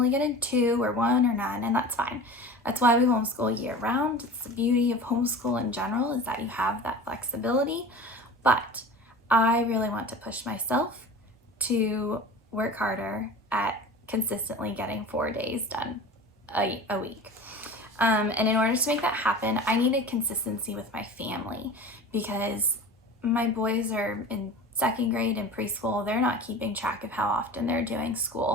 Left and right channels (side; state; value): both; normal; correlation 0.36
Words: get in 2 or 1 or none, and that's fine. That's why we homeschool year round. It's the beauty of homeschool in general, is that you have that flexibility. But I really want to push myself to work harder at consistently getting 4 days done a week. And in order to make that happen, I needed consistency with my family, because my boys are in 2nd grade and preschool. They're not keeping track of how often they're doing